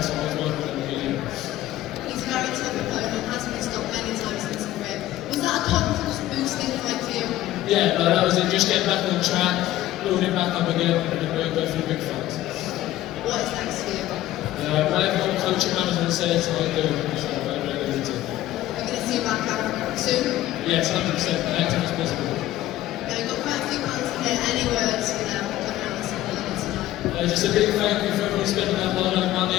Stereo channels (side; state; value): right; quieter; 14.6 dB